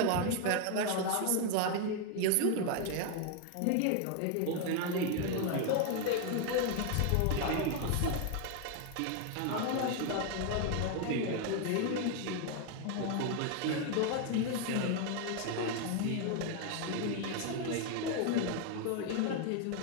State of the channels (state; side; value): different; both; correlation 0.01